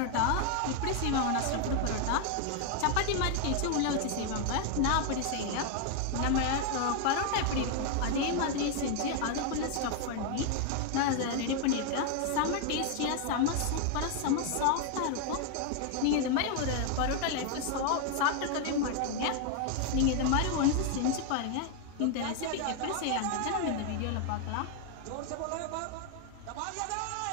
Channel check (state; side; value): different; both; correlation 0.00